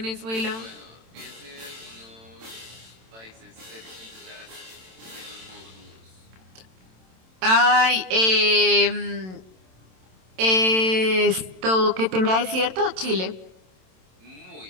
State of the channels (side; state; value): left; late; 27 ms